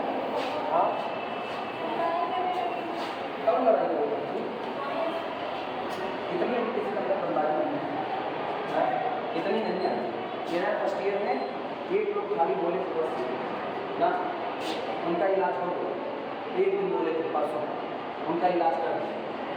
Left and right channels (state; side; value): identical; both; correlation 1.00